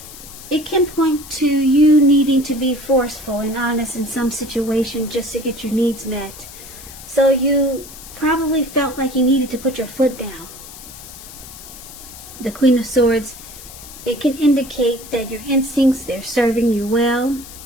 it can point to you needing to be forceful and honest in some situation just to get your needs met. So you probably felt like you needed to put your foot down. The Queen of Swords, it can indicate that your instincts, they're serving you well,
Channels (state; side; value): noise; left; hiss, 16 dB below the sound